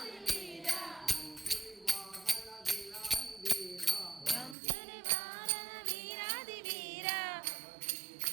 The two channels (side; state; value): left; drops out; at 4.5 s